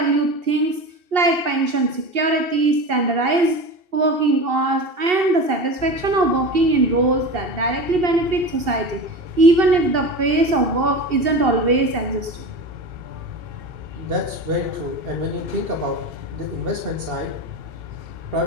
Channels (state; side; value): late; left; 2.7 ms